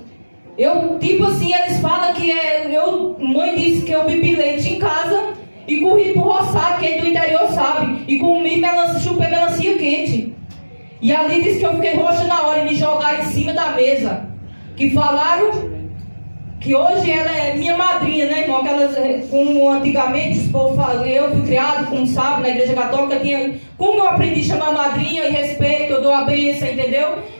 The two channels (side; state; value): both; inverted; correlation -1.00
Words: Eu, tipo assim, eles falam que mãe disse que eu bebi leite em casa e corri pro roçado, quem do interior sabe, e comi chupei melancia quente. E ali disse que eu fiquei roxa na hora e me jogaram em cima da mesa. Que falaram que hoje ela é minha madrinha, né, irmão? Como antigamente, os povos falam, eu fui criado, como sabe, na igreja católica, como eu aprendi a chamar madrinha e respeito, eu dou a bênção, entendeu?